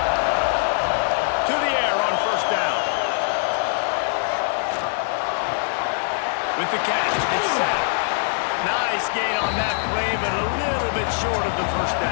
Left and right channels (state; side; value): silent; right; digital silence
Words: To the air on first down. With the catch, it's sacked. Nice gain on that play, but a little bit short of the first